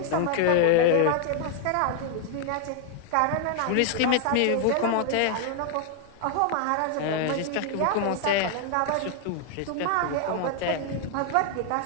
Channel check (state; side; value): different; both; correlation 0.00